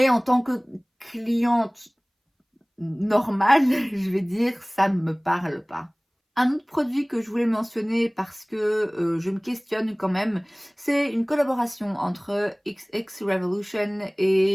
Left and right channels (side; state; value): both; identical; correlation 1.00